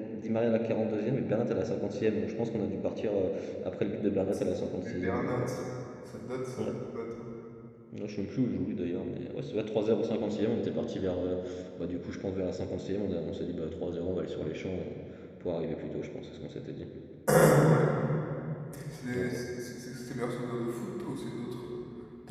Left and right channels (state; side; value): identical; both; correlation 1.00